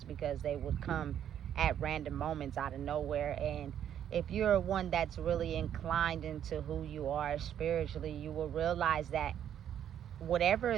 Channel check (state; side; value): quieter; left; 9.9 dB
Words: because they would come at random moments out of nowhere. And if you're one that's really inclined into who you are spiritually, you will realize that whatever